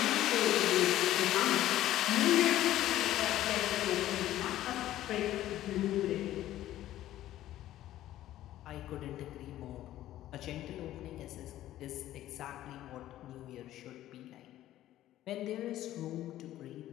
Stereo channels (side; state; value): right; quieter; 13.7 dB